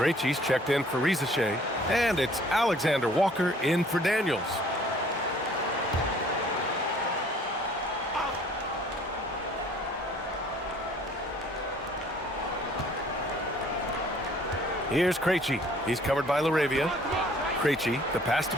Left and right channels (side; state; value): both; normal; correlation 0.56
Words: checked in for Rizache. And it's Alexander Walker in for Daniels. Here's Krejci. He's covered by LaRavia. Krejci, the pass to